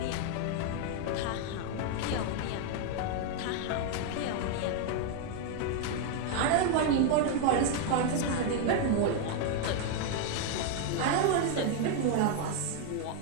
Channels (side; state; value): both; different; correlation 0.00